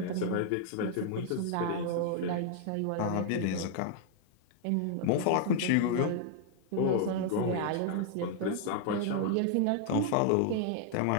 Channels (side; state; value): both; different; correlation 0.00